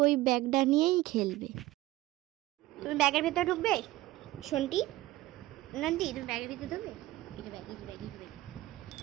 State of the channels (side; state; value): left; quieter; 17.4 dB